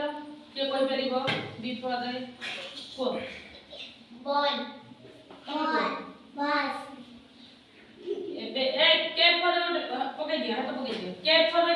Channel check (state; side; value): identical; both; correlation 1.00